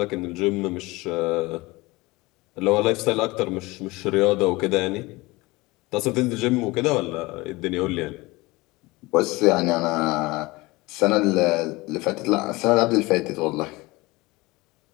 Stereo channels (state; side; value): quieter; right; 22.0 dB